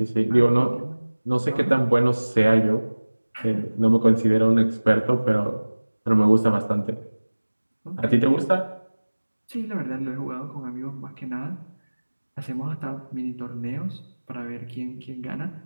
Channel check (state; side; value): inverted; both; correlation -1.00